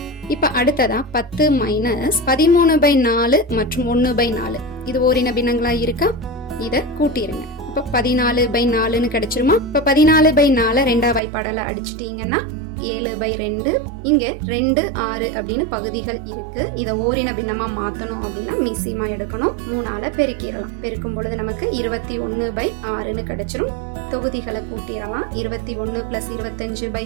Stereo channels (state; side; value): drops out; left; at 11.2 s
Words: இப்ப அடுத்ததா 10 மைனஸ் 13/4 மற்றும் 1/4 இது ஓரின பின்னங்களா இருக்கா, இத கூட்டிருங்க. இப்ப 14/4 கிடைச்சிருமா? இப்ப 14/4 ரெண்டா வாய்ப்பாடல அடிச்சிட்டீங்கன்னா 7/2. இங்க 2 6 அப்படின்னு பகுதிகள் இருக்கு. இத ஓரின பின்னமா மாத்தணும் அப்படின்னா மீசியமா எடுக்கணும். 3ஆல பெருக்கிடலாம். பெருக்கும் பொழுது நமக்கு 21/6 கிடைச்சிரும். தொகுதிகளை கூட்டிடலாம். 21 பிளஸ்